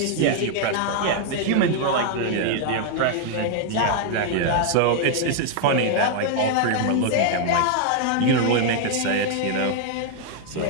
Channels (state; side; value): different; both; correlation 0.00